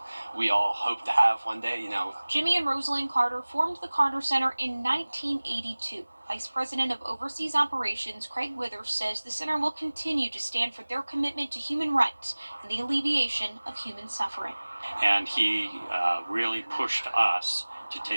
we all hope to have one day, Jimmy and Rosalind Carter formed the Carter Center in 1982. Vice President of Overseas Operations Craig Withers says the center will continue to stand for their commitment to human rights and the alleviation of human suffering. And he really pushed us to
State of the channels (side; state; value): both; inverted; correlation -1.00